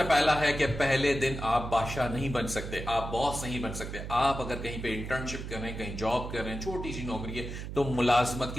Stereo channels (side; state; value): right; noise; hum, 7 dB below the sound